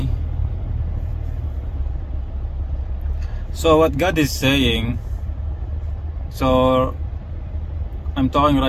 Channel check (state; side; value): identical; both; correlation 1.00